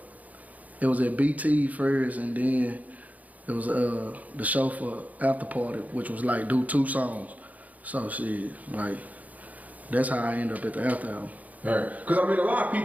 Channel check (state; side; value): late; left; 0.075 ms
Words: It was at BT first, and then it was the show for after party, which was like do 2 songs. So shit, like that's how I end up at the after hour. Right. Because I mean, a lot of